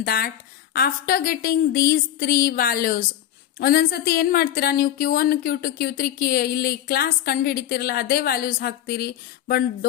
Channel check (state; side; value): quieter; right; 11.5 dB